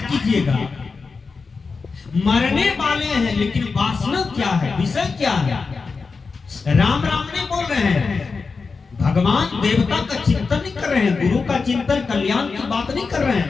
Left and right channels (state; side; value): quieter; right; 4.6 dB